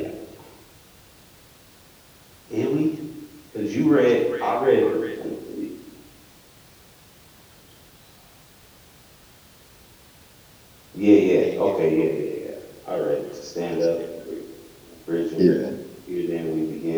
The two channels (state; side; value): identical; both; correlation 1.00